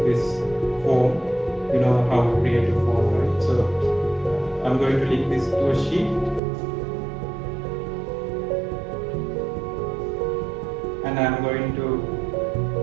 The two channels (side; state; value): left; drops out; at 6.4 s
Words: This form. You know how to create a form, right? So I'm going to link this to a sheet, and I'm going to